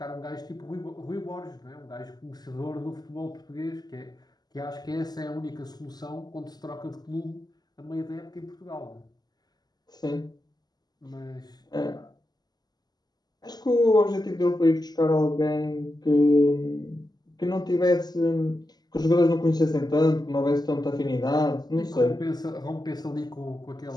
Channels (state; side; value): late; right; 0.20 ms